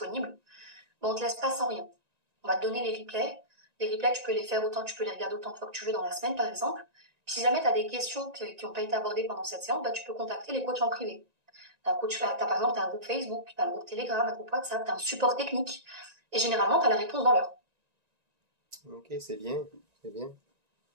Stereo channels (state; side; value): late; left; 1.9 ms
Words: On te laisse pas sans rien. On va te donner les replays. Les replays, tu peux les faire autant, tu peux les regarder autant de fois que tu veux dans la semaine, par exemple. Puis si jamais tu as des questions qui n'ont pas été abordées pendant cette séance, tu peux contacter les coachs en privé. Par exemple, t'as un groupe Facebook, t'as un groupe Telegram, un groupe WhatsApp, t'as un support technique. Et généralement, t'as la réponse dans l'heure. Ok, c'est bien, c'est bien.